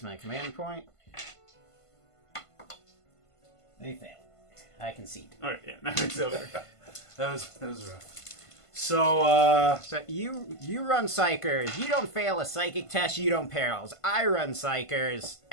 my command point. They fail. I concede. Alright, yeah, now it's over. That was rough. So, So you run Psychers. You don't fail a psychic test. You don't perils. I run Psychers.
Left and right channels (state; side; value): late; right; 1.5 ms